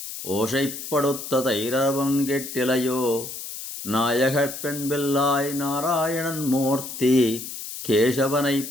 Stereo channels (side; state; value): left; noise; hiss, 9 dB below the sound